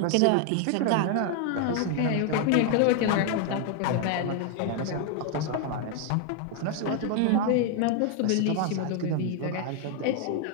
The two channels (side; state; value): both; different; correlation 0.00